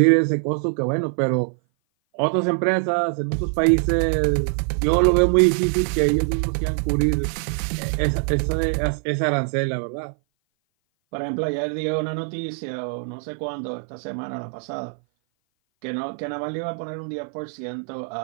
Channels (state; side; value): silent; left; 57 dB below the other